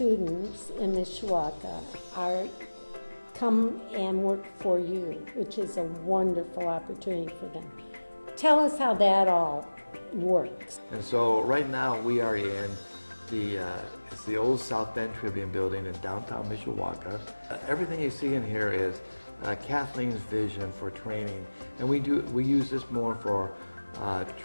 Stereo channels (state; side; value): inverted; both; correlation -1.00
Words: in Mishawaka come and work for you, which is a wonderful opportunity for them. Tell us how that all works. And so right now we are in it's the old South Bend Tribune building in downtown Mishawaka. Everything you see in here is Kathleen's vision for training, and we use this more for